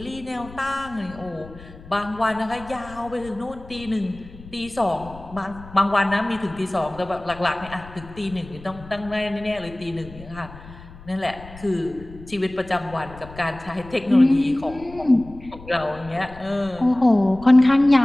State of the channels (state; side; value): noise; left; rumble, 18 dB below the sound